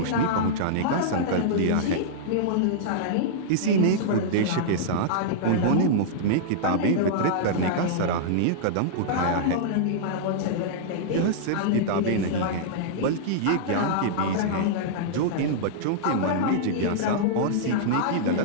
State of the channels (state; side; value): different; both; correlation -0.02